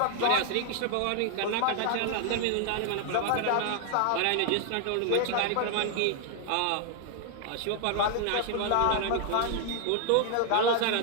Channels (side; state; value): both; different; correlation 0.00